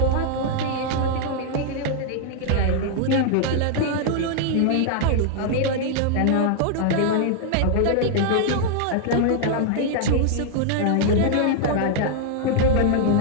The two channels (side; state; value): both; different; correlation -0.01